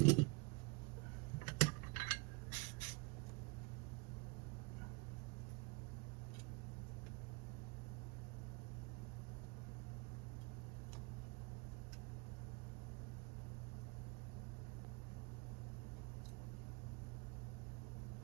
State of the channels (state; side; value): quieter; left; 28.6 dB